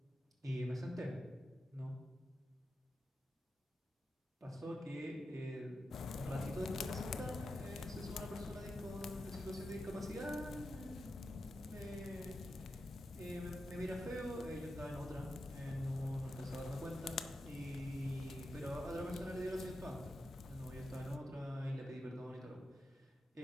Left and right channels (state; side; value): normal; both; correlation 0.89